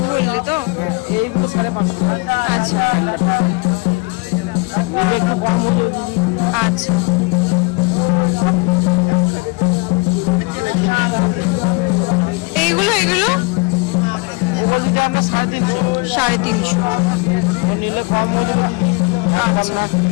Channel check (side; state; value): right; quieter; 27.9 dB